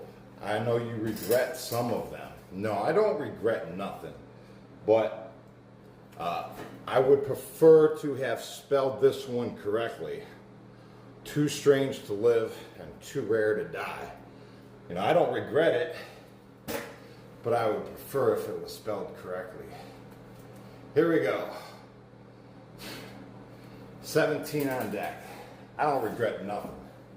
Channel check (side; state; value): both; identical; correlation 1.00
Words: I know you regret some of them. No, I don't regret nothing. But I would prefer to have spelled this one correctly. Too strange to live and too rare to die. You know, I don't regret it, but I would prefer if it was spelled correctly. Here we go. 17 on deck. I don't regret nothing.